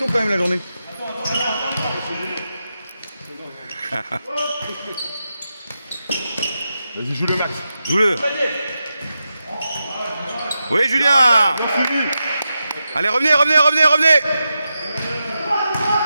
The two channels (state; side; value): inverted; both; correlation -0.89